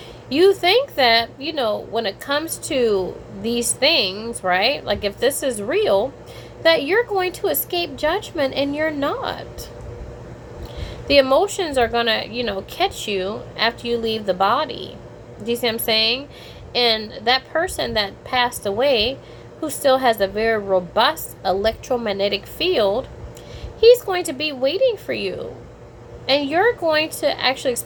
You think that, when it comes to these things, right, like if this is real, that you're going to escape judgment, and you're not. The emotions are going to, catch you after you leave the body. Do you see what I'm saying? And that person that passed away, who still has a very robust electromagnetic field, he's going to be waiting for you. And you're going to actually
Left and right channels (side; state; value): both; identical; correlation 1.00